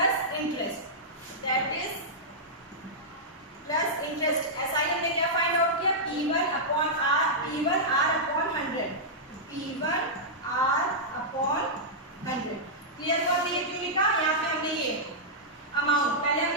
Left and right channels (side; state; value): both; normal; correlation -0.10